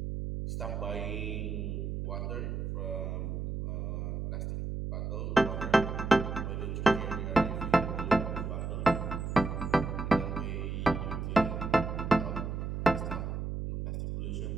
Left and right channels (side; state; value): right; noise; hum, 3 dB below the sound